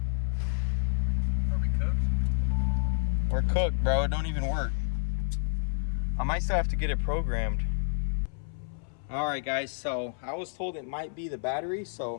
We're cooked, bro. It don't even work. I might still have to get it programmed. All right, guys, so I was told it might be the battery,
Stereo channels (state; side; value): silent; right; 58 dB below the other